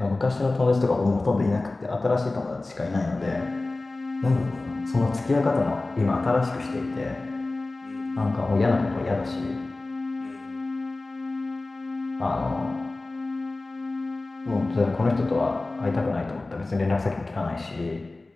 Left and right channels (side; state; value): right; quieter; 3.1 dB